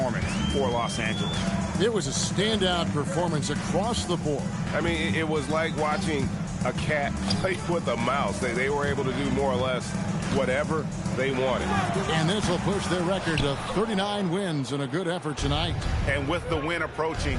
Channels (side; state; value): both; identical; correlation 1.00